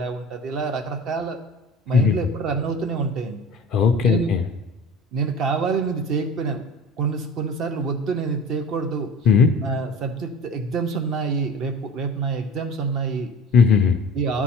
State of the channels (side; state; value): both; normal; correlation 0.39